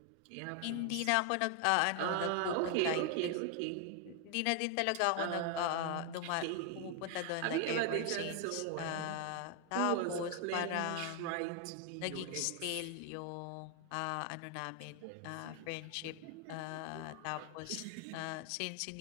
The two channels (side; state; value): both; different; correlation 0.00